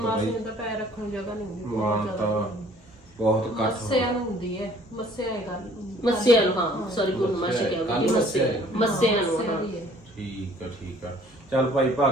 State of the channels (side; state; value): both; normal; correlation 0.56